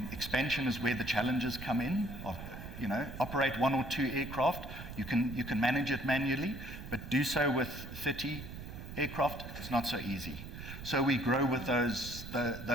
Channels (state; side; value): noise; right; rumble, 11 dB below the sound